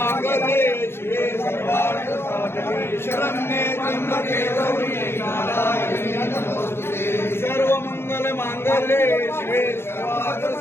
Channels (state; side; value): late; right; 0.12 ms